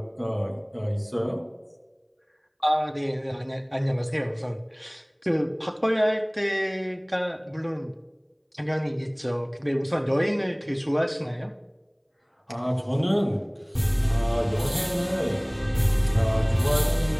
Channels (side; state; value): both; identical; correlation 1.00